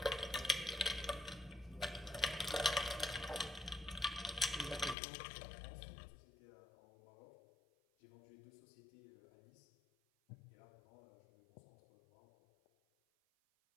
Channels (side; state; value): right; drops out; at 5.0 s